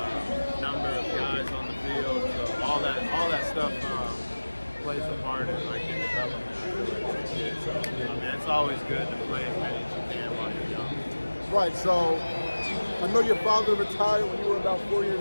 number of guys on the field. So all that stuff plays a part in like your development. I feel like as a kid. So I mean, it's always good to play as many as you can while you're young. Right. So I know your father retired when you were about 4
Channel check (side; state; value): both; inverted; correlation -1.00